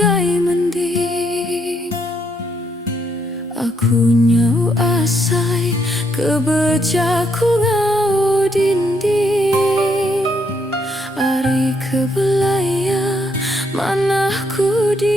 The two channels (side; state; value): both; normal; correlation 0.74